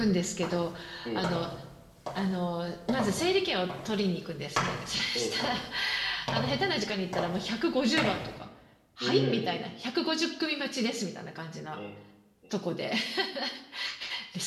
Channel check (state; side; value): identical; both; correlation 1.00